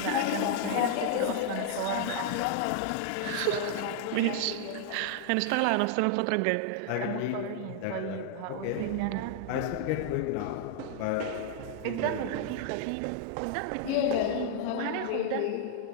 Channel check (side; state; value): both; different; correlation -0.01